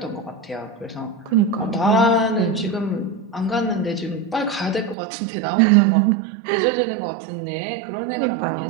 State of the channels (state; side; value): drops out; left; at 5.0 s